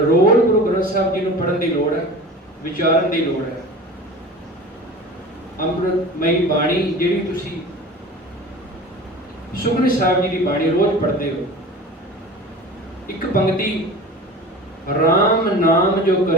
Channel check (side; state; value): both; normal; correlation 0.36